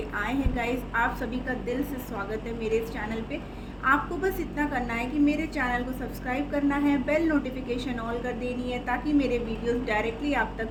आए हैं गाइस, आप सभी का दिल से स्वागत है मेरे इस चैनल पे। आपको बस इतना करना है कि मेरे चैनल को सब्सक्राइब करना है, बेल नोटिफिकेशन ऑल कर देनी है ताकि मेरे वीडियोस डायरेक्टली आप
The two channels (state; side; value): identical; both; correlation 1.00